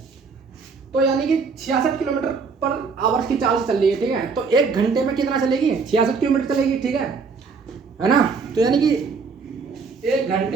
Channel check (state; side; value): quieter; left; 5.0 dB